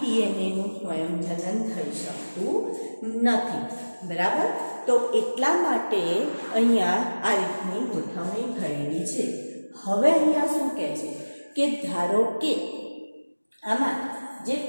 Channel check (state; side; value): inverted; both; correlation -1.00